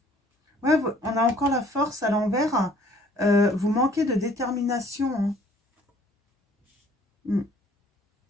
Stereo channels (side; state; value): both; normal; correlation 0.57